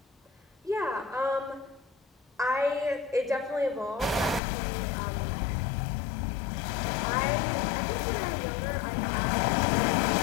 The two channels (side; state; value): right; drops out; at 4.4 s